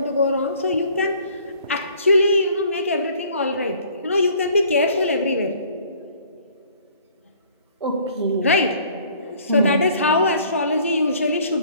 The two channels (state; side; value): inverted; both; correlation -0.56